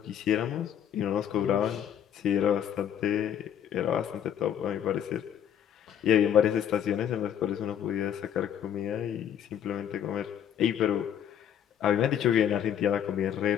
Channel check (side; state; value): right; quieter; 9.5 dB